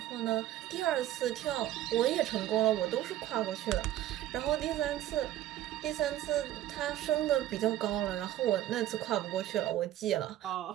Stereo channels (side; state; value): left; quieter; 13.4 dB